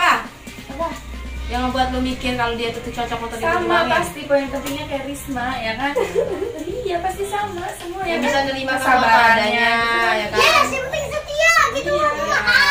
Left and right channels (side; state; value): both; identical; correlation 1.00